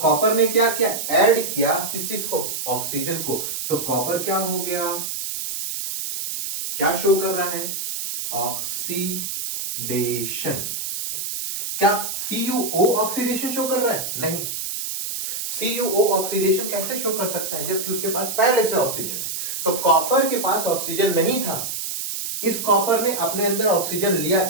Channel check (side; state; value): right; noise; hiss, 4 dB below the sound